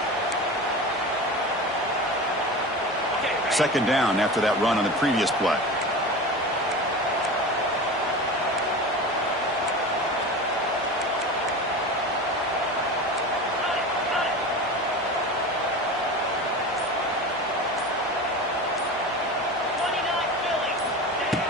Second down after that run on the previous play.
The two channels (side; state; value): both; normal; correlation 0.30